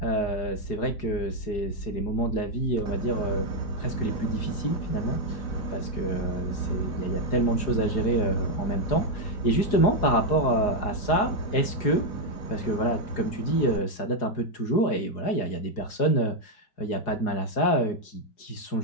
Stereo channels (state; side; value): late; right; 4.8 ms